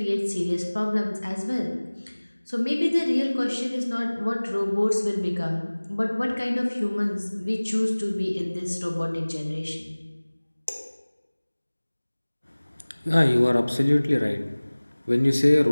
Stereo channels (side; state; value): both; inverted; correlation -1.00